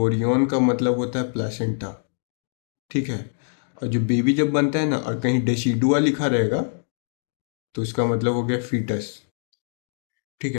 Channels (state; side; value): silent; right; digital silence